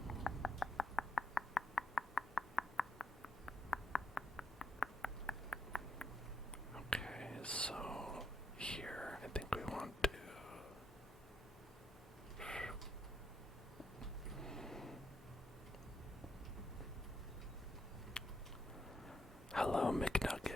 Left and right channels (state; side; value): normal; both; correlation 0.78